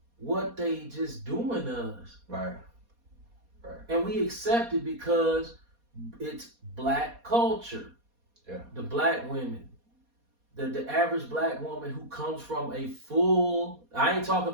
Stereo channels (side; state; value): left; late; 4.2 ms